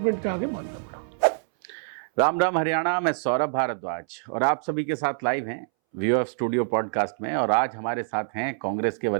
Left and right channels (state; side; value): silent; left; 61 dB below the other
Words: के आगे मानना पड़ा। राम राम हरियाणा, मैं सौरभ भारद्वाज और आप सभी के साथ लाइव हैं व्यू ऑफ स्टूडियो पॉडकास्ट में। और आज हमारे साथ हैं कांग्रेस के